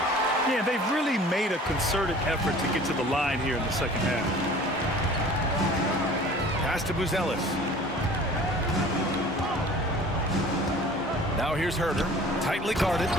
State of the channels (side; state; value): both; normal; correlation 0.46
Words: Yeah, they've really made a concerted effort to get to the line here in the second half. Pass to Buzelis. Now here's Herter. Tightly guarded.